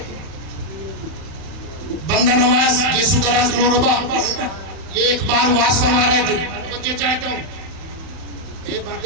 बंदा नवाज यीशु दराज ग्लोरबा, ये एक बार वाज फरमा रहे थे। बच्चे चाहता हूँ ये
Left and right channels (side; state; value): left; late; 31 ms